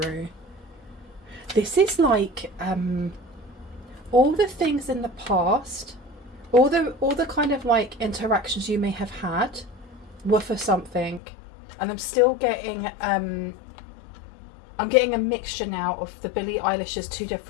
This is like all the things in the past, all the kind of like interactions you may have had were for something, and I'm still getting I'm getting a mixture now of the Billie Eilish's two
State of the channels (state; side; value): drops out; right; at 11.2 s